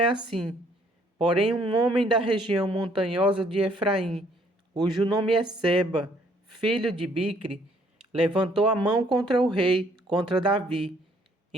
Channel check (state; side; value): normal; both; correlation 0.64